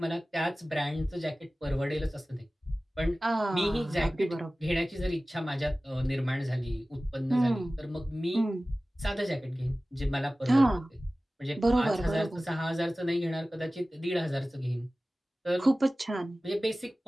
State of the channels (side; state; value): both; normal; correlation 0.97